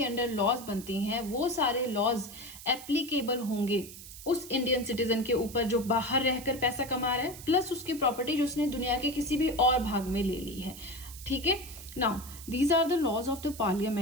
अंडर लॉज बनती हैं, वो सारे लॉज एप्लीकेबल होंगे उस इंडियन सिटीजन के ऊपर जो बाहर रहकर पैसा कमा रहा है, प्लस उसकी प्रॉपर्टी जो उसने दुनिया के किसी भी और भाग में ले ली है, ठीक है। Now, these are the laws of the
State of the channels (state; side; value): noise; right; hiss, 14 dB below the sound